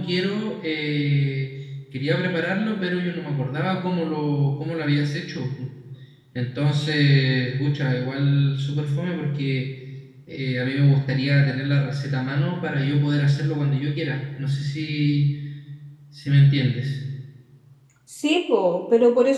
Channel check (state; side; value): identical; both; correlation 1.00